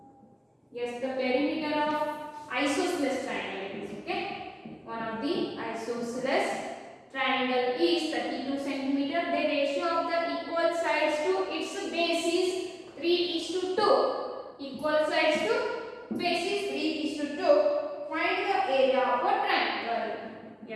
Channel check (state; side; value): identical; both; correlation 1.00